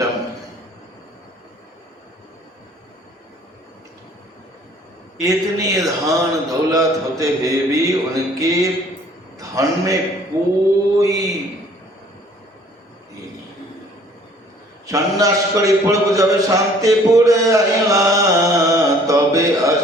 है। इतनी धन दौलत होते हुए भी उनके धन में कोई सन्यास करी पड़ब जाबे शांतिपुर आइला, तबे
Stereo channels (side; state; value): both; normal; correlation 0.56